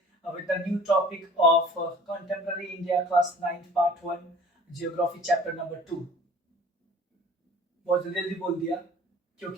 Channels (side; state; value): both; normal; correlation 0.47